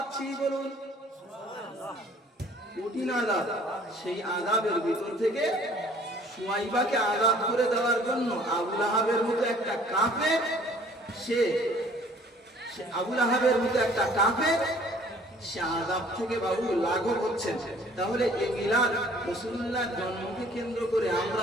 বলুন সুবহানাল্লাহ। কঠিন আযাব, সেই আযাবের ভিতর থেকে সুয়াইবাকে আযাদ করে দেওয়ার জন্য আবু লাহাবের মতো একটা কাফের, সে আবু লাহাবের মতো একটা কাফের সে আযাব থেকে বাবু লাঘব হচ্ছেন। তাহলে এই মিলাদ, রাসূলুল্লাহর জন্মকে কেন্দ্র করে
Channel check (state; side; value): normal; both; correlation 0.55